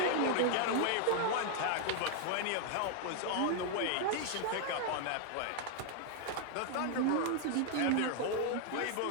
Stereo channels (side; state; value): both; different; correlation 0.00